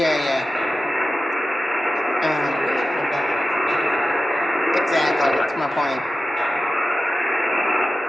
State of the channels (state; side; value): normal; both; correlation 0.94